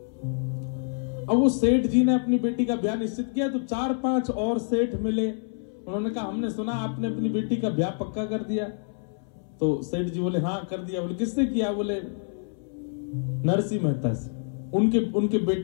अब वो सेठ जी ने अपनी बेटी का ब्याह निश्चित किया तो 4-5 और सेठ मिले, उन्होंने कहा हमने सुना आपने अपनी बेटी का ब्याह पक्का कर दिया। तो सेठ जी बोले हाँ कर दिया। बोले किससे किया? बोले नरसिंह मेहता से, उनके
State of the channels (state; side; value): silent; right; 60 dB below the other